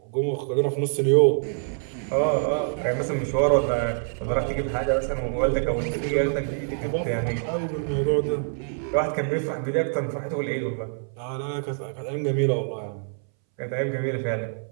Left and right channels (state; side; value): silent; left; 61 dB below the other